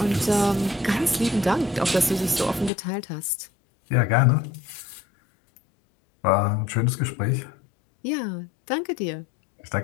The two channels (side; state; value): right; drops out; at 2.7 s